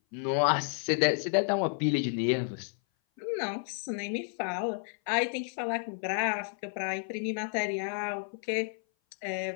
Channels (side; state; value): right; silent; 56 dB below the other